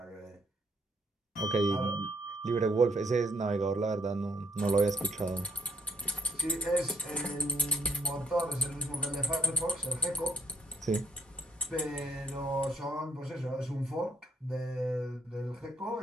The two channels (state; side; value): normal; both; correlation 0.69